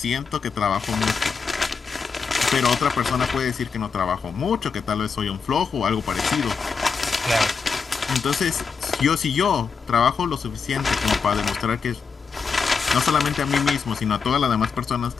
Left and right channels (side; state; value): right; quieter; 5.6 dB